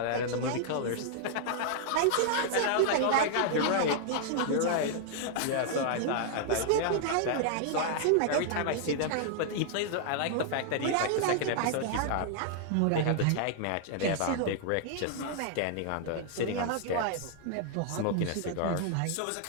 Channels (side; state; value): both; different; correlation -0.01